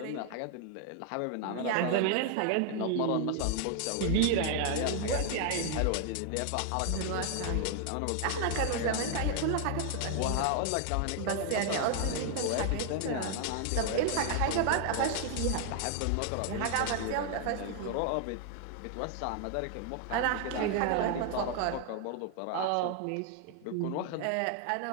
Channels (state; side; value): different; both; correlation 0.00